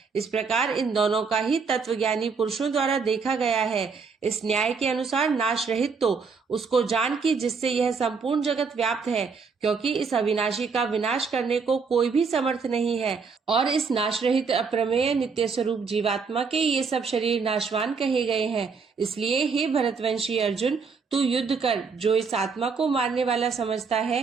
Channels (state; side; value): quieter; left; 5.2 dB